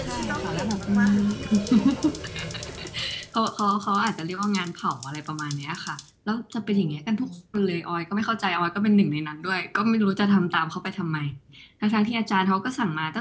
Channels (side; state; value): both; identical; correlation 1.00